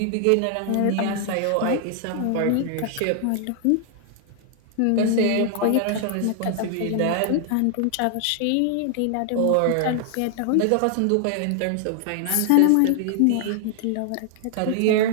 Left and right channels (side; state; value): both; different; correlation 0.00